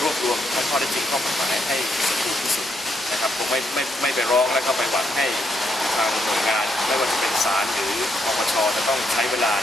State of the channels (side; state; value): both; normal; correlation 0.77